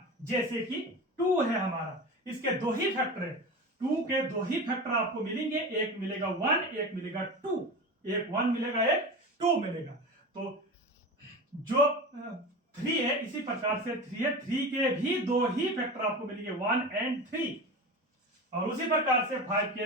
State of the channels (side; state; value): both; normal; correlation 0.28